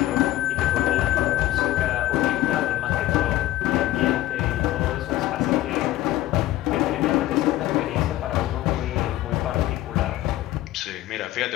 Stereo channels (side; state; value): right; quieter; 15.1 dB